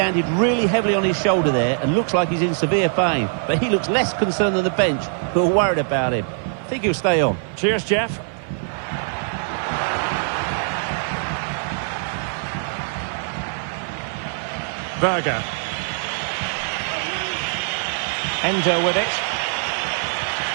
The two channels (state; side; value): silent; left; 61 dB below the other